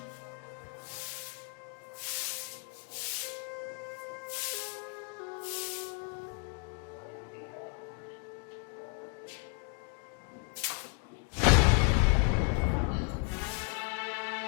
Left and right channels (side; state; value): right; quieter; 36.9 dB